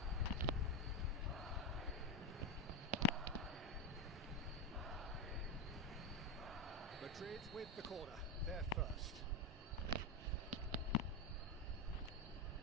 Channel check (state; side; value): normal; both; correlation 0.09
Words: Madrid with the corner. there first.